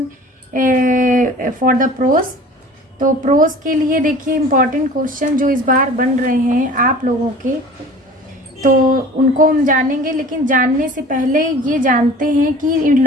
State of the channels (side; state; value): both; normal; correlation 0.44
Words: for the prose. तो प्रोज के लिए देखिए इम्पोर्टेंट क्वेश्चन जो इस बार बन रहे हैं आप लोगों के, तो उनको हम जानेंगे। लेकिन जानने से पहले ये जानते हैं कि